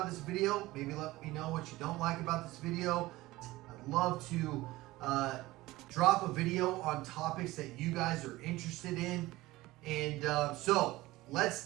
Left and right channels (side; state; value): left; quieter; 18.6 dB